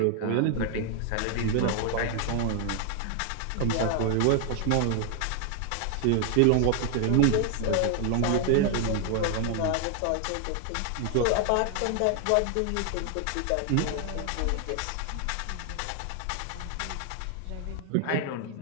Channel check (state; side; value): different; both; correlation 0.00